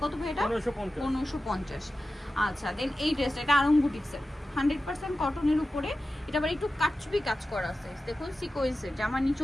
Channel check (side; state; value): both; normal; correlation 0.94